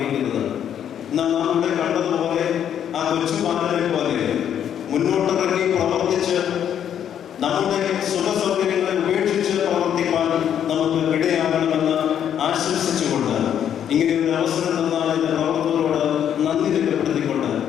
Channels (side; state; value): right; quieter; 9.4 dB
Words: എന്നാൽ നാം ഇവിടെ കണ്ടതുപോലെ ആ കൊച്ചുപാലനെ പോലെ മുന്നോട്ടിറങ്ങി പ്രവർത്തിച്ച് നമ്മുടെ സുഖസൗകര്യങ്ങളെ ഉപേക്ഷിച്ച് പ്രവർത്തിക്കാൻ നമുക്ക് ഇടയാകണമെന്ന് ആശംസിച്ചുകൊണ്ട് ഇങ്ങനെ ഒരു അവസരം തന്നാൽ എന്റെ പ്രവർത്തകരോട് നന്ദി രേഖപ്പെടുത്തിക്കൊണ്ട്